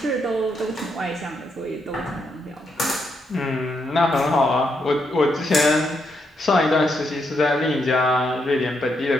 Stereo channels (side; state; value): both; normal; correlation 0.79